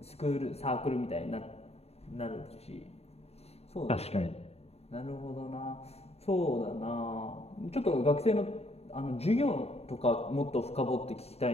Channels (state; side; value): late; right; 0.30 ms